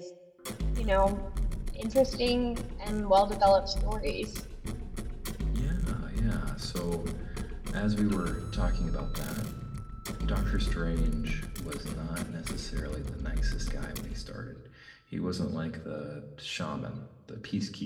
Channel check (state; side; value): identical; both; correlation 1.00